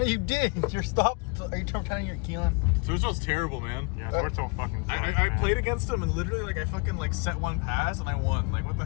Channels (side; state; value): right; quieter; 31.8 dB